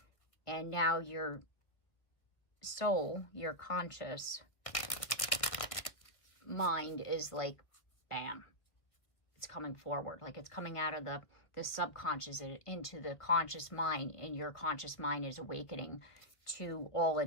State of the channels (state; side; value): late; right; 1.8 ms